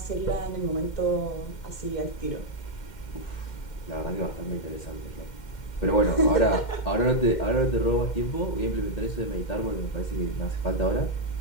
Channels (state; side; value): late; right; 2.1 ms